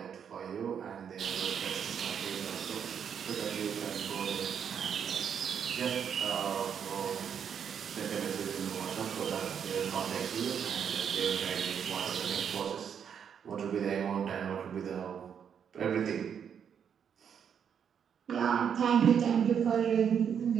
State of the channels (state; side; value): quieter; left; 7.8 dB